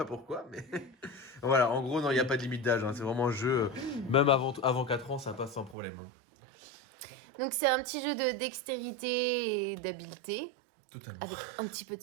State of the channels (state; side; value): drops out; left; at 5.8 s